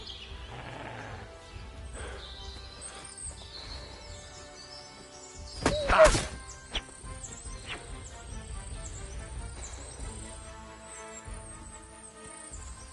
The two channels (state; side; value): identical; both; correlation 1.00